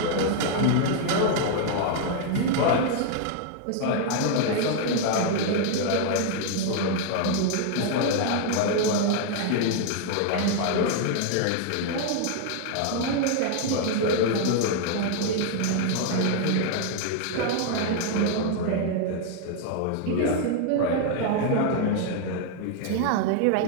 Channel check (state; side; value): different; both; correlation 0.00